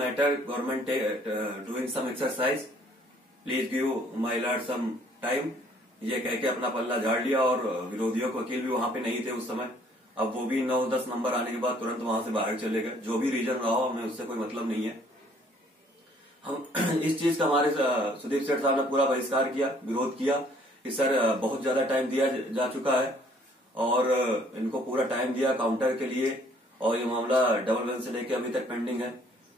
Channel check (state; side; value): normal; both; correlation 0.60